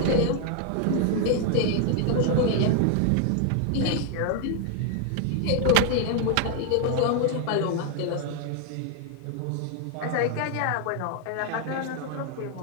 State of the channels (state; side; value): different; both; correlation 0.00